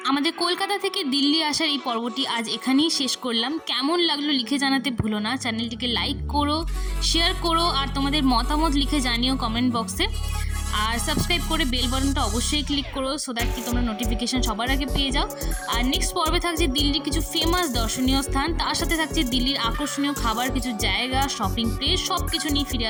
আমাদের কলকাতা থেকে দিল্লি আসার এই পর্বটি আজ এখানেই শেষ করলাম। কেমন লাগলো লিখে জানাতে ভুলো না, চ্যানেলটিকে লাইক করো, শেয়ার করো, আর তোমাদের মতামত লিখে জানিও কমেন্ট বক্সে। আর সাবস্ক্রাইব করে বেল বাটনটা অবশ্যই ক্লিক করো, সো দ্যাট কি তোমরা নোটিফিকেশন সবার আগে পেয়ে যাও। আর নেক্সট পর্বে থাকছে দিল্লির কিছু ফেমাস দর্শনীয় স্থান, তার সাথে থাকছে দিল্লির আকর্ষণীয় খাবার, কিছু জায়গা, শপিং প্লেস, সব কিছু নিয়ে ফিরে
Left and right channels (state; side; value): identical; both; correlation 1.00